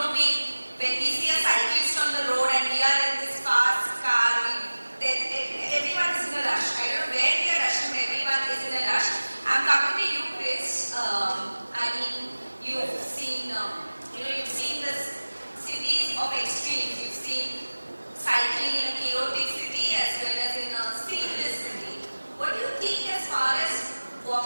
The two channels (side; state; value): both; inverted; correlation -1.00